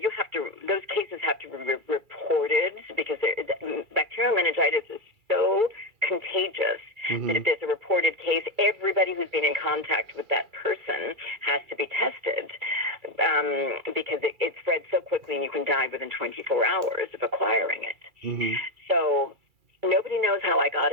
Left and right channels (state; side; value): late; left; 2.3 ms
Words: have to, those cases have to be reported because bacterial meningitis is so contagious that if there's a reported case, everybody who's been in contact with that person has to be tested because it spreads so quickly and you can die within 24 hours of acquiring it. So nobody knows how I got